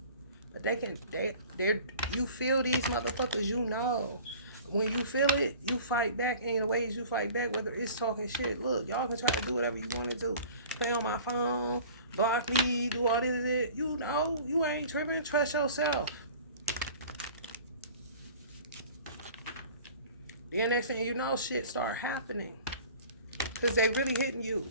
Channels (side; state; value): both; inverted; correlation -0.45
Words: But you feel these motherfuckers, you know. When you feel it, you fight back in the ways you fight back, whether it's talking shit. Look, y'all can try to do whatever you want to do. Play on my phone, block me, do all this. You know, you ain't tripping. Trust yourself. Then next thing you know, shit start happening. Because they really hitting you.